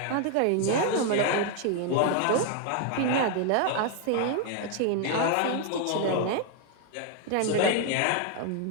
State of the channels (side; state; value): both; different; correlation 0.00